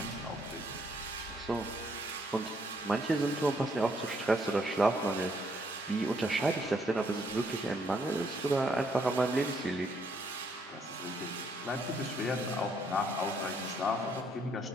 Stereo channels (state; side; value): normal; both; correlation 0.71